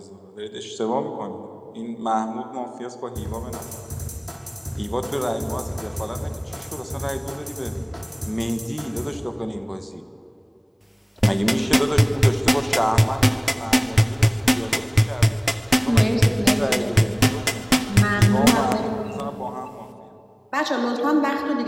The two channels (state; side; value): identical; both; correlation 1.00